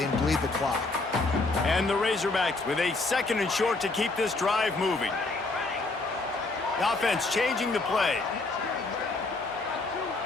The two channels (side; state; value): right; quieter; 3.4 dB